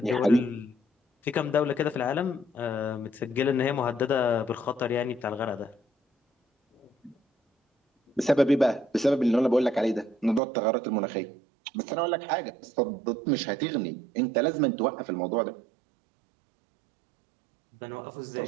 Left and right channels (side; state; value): left; drops out; at 10.4 s